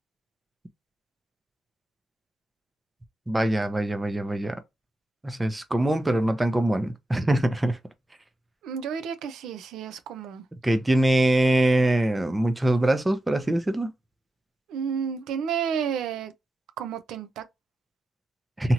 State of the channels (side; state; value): both; normal; correlation 0.91